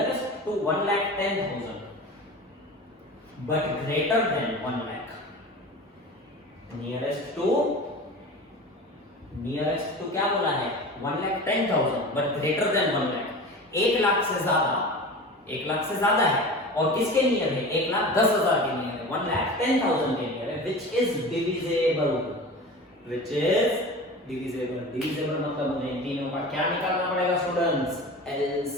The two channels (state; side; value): normal; both; correlation 0.33